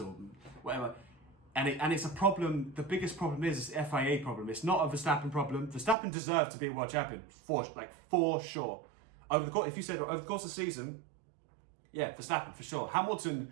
or whatever. And it's a problem. The biggest problem is the FIA problem. It's not a Verstappen problem. Verstappen deserved to be a world champion for sure. Over the course of the season, yeah, Verstappen for sure. Hamilton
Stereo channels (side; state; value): left; drops out; at 6.0 s